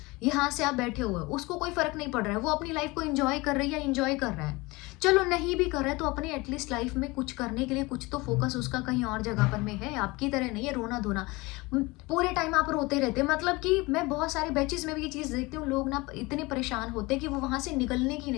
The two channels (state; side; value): quieter; right; 23.3 dB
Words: यहाँ से आप बैठे हुए हो, उसको कोई फ़र्क नहीं पड़ रहा है, वो अपनी लाइफ़ को एन्जॉय कर रही है या एन्जॉय कर रहा है। चलो नहीं भी कर रहा है तो अपनी एटलीस्ट लाइफ़ में कुछ करने के लिए कुछ तो फ़ोकस उसका कहीं और जगह पर में है, आपकी तरह नहीं है रोना-धोना। पूरे टाइम आप रोते रहते हैं, मतलब कि मैं बहुत सारे बैचेज़ में भी ये चीज़ देखती हूँ, लोग ना इतने परेशान होते हैं कि वो वहाँ से निकलने की